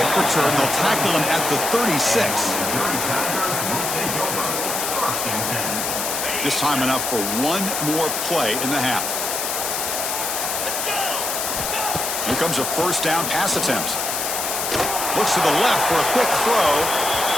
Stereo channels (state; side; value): noise; left; hiss, 2 dB below the sound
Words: return, they'll tackle him at the 36. Just time enough for one more play in the half. Here comes a 1st down pass attempt. Looks to the left for a quick throw.